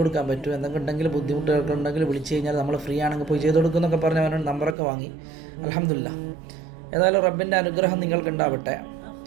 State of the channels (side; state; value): left; drops out; at 4.8 s